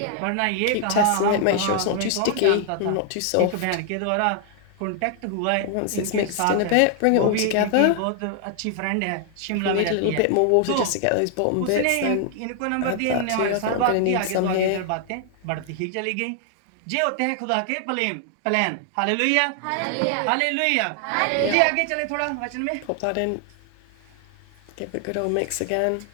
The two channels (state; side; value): different; both; correlation 0.00